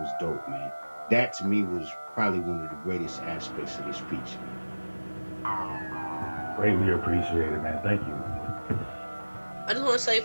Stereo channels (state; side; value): inverted; both; correlation -1.00